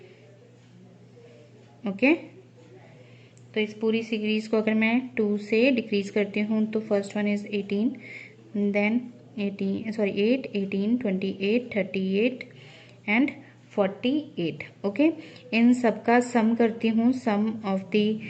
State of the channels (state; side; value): identical; both; correlation 1.00